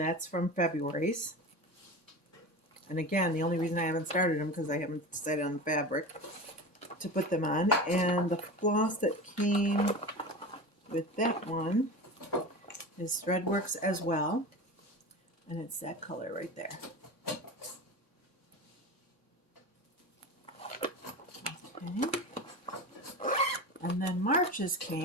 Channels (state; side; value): late; left; 3.6 ms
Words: from February's. And again, the only reason I haven't started them because I haven't decided on the fabric to put them on. And the floss that came with that one is Threadworks as well. And it's that color right there. Okay. And then March's